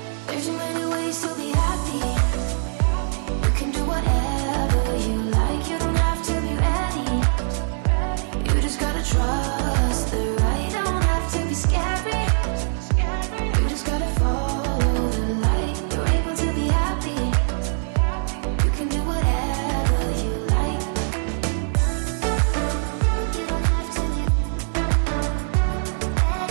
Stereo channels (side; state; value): left; silent; digital silence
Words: There's so many ways to be happy. You can do whatever you like. You don't have to be ready. You just gotta trust the right. Don't have to be scary. You just gotta follow the light. You're able to be happy. You can do whatever you like. You don't have to be